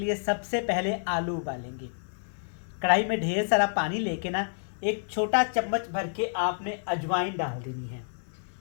लिए सबसे पहले आलू उबालेंगे। कढ़ाई में ढेर सारा पानी लेके ना एक छोटा चम्मच भर के आपने अजवाइन डाल देनी है।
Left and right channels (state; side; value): silent; right; digital silence